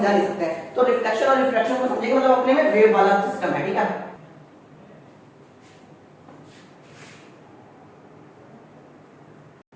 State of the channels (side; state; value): both; identical; correlation 1.00